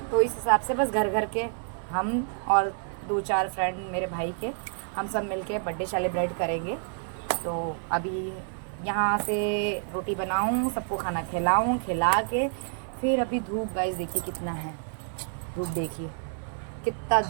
तो इस हिसाब से बस घर घर के हम और 2-4 फ्रेंड मेरे भाई के, हम सब मिलके बर्थडे सेलिब्रेट करेंगे। तो अभी यहाँ से रोटी बनाऊँ, सबको खाना खिलाऊँ, खिला के फिर अभी धूप गाइस देखिए कितना है, धूप देखिए कितना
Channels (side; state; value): left; silent; 59 dB below the other